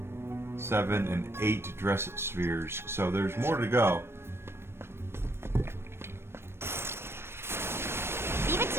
7, and 8 dress spheres. So there's more to go. Leave it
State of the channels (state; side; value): late; left; 0.12 ms